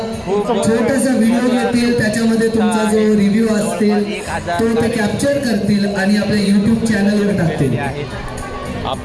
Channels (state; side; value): identical; both; correlation 1.00